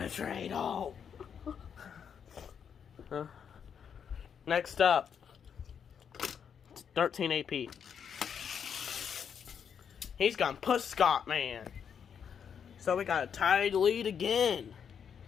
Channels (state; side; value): quieter; right; 7.5 dB